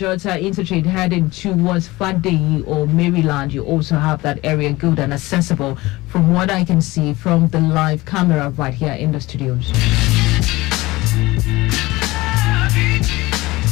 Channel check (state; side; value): quieter; right; 20.1 dB